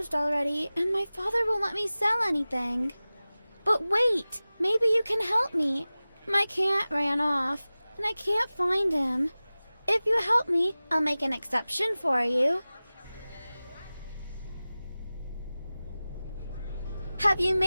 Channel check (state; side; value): inverted; both; correlation -0.97